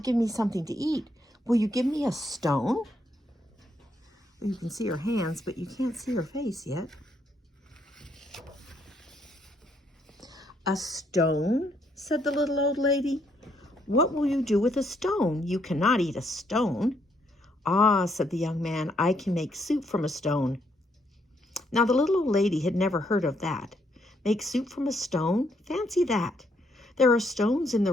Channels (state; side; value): normal; both; correlation 0.73